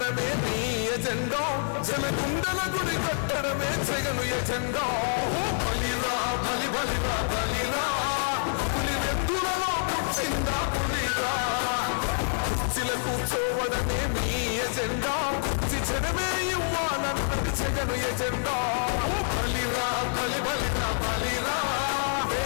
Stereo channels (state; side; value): silent; right; 60 dB below the other